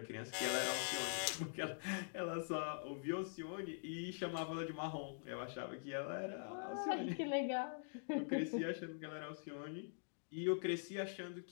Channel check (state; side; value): silent; right; digital silence